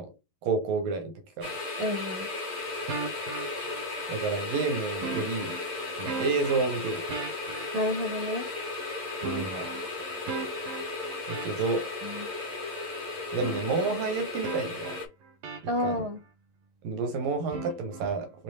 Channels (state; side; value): late; left; 11 ms